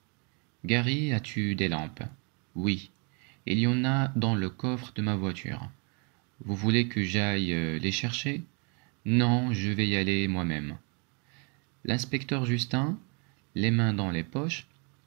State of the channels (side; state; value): left; quieter; 35.0 dB